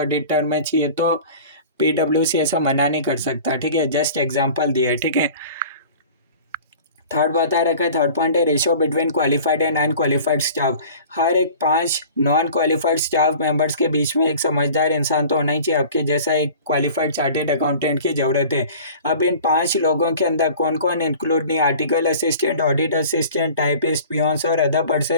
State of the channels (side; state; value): both; inverted; correlation -0.43